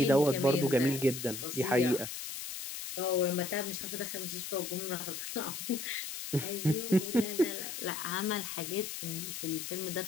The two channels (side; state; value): left; noise; hiss, 7 dB below the sound